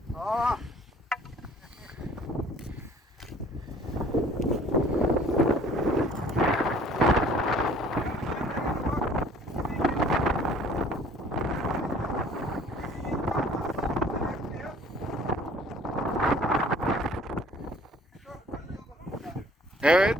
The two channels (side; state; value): both; normal; correlation 0.54